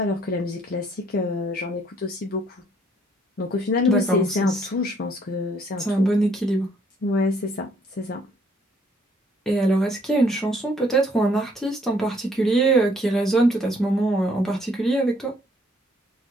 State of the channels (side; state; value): both; normal; correlation 0.65